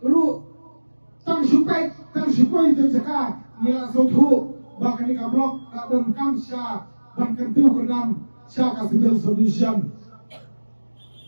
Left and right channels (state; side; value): inverted; both; correlation -1.00